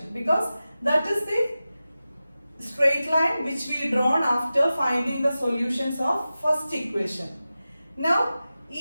because that is the straight line which we drawn after finding the solutions of first equation. Now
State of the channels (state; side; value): inverted; both; correlation -0.94